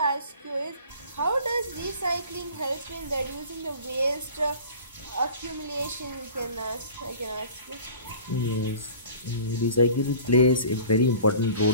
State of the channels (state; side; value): inverted; both; correlation -0.44